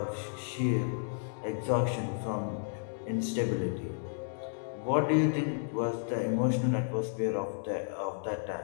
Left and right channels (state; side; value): silent; right; digital silence